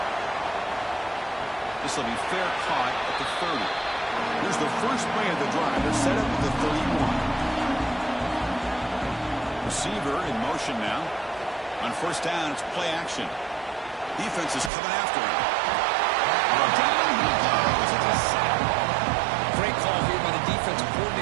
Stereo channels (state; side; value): drops out; left; at 14.7 s